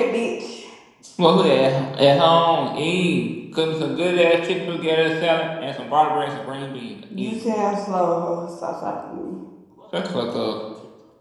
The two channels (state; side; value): identical; both; correlation 1.00